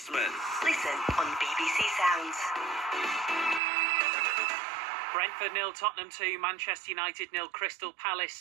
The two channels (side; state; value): left; drops out; at 3.6 s